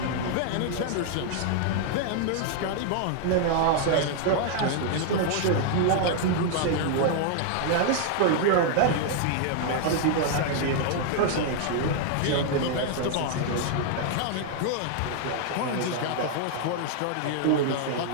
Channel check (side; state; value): both; different; correlation 0.00